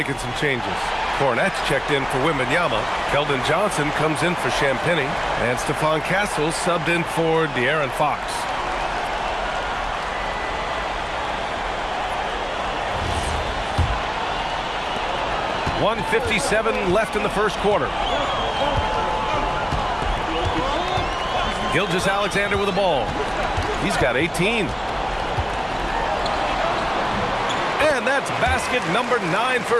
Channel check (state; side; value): identical; both; correlation 1.00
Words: some changes. Cornette's checked in for Wembanyama. Keldon Johnson comes in for Champagny. And Stephon Castle subbed in for De'Aaron Fox. .157 left in the first quarter. Gilgeous-Alexander with the ball. He's got 18. And that's basket number 9